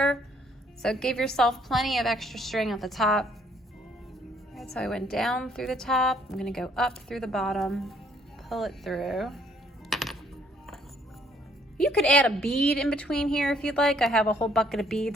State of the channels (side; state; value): both; normal; correlation 0.65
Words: So give yourself plenty of extra string at the top. All right, so I went down through the top. I'm gonna go up through the bottom, pull it through. You could add a bead in between here if you'd like. I have a whole bucket of